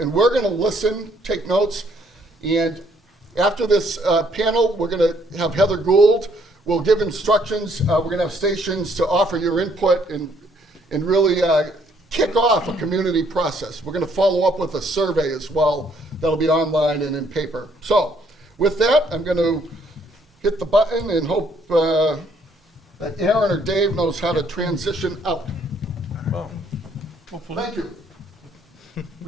we're gonna listen, take notes, and after this panel, we're gonna have Heather Gould. We'll give instructions. We're going to have stations to offer your input and really kick off a community process. We're going to follow up with a survey as well. That'll be online and in paper. So with that, I'm going to hit the button and hope that Aaron or Dave knows how to transition out. Well, hopefully. Thank you.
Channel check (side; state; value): both; normal; correlation 0.66